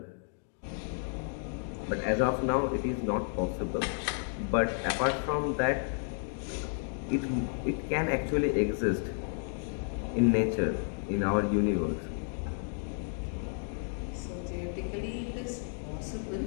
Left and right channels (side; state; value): right; silent; 56 dB below the other